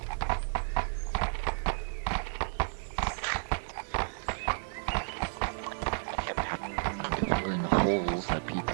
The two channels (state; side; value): silent; left; digital silence